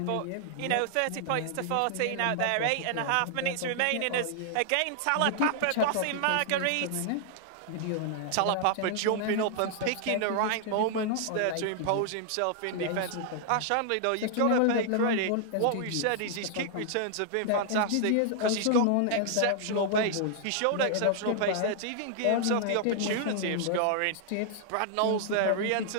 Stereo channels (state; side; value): different; both; correlation 0.00